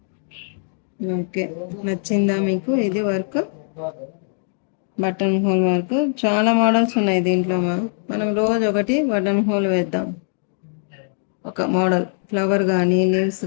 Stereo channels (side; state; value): right; silent; 65 dB below the other